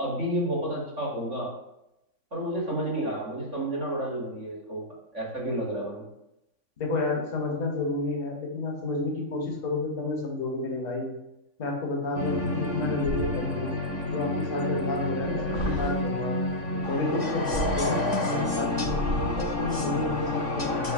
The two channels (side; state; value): left; late; 3.5 ms